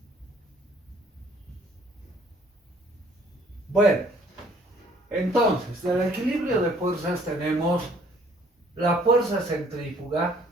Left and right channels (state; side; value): normal; both; correlation 0.59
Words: Bueno, entonces, del equilibrio de fuerzas tenemos la fuerza centrífuga